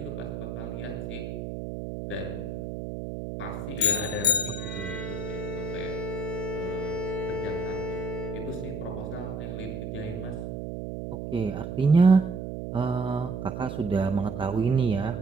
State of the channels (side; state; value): right; noise; hum, 6 dB below the sound